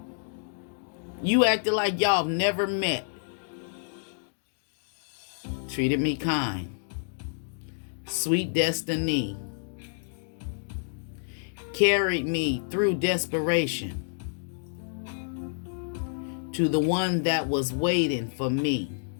You acted like y'all never met. Treated me kind. Sweet destiny. Carried me through desperation to the one that was waiting for me.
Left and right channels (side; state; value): right; silent; digital silence